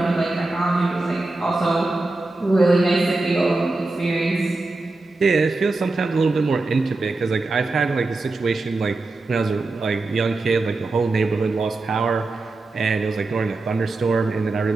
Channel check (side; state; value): left; quieter; 3.3 dB